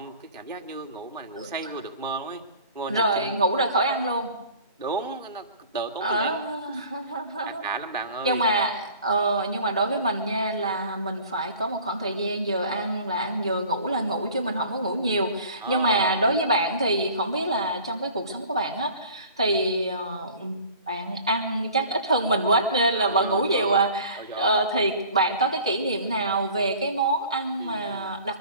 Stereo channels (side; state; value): both; inverted; correlation -0.46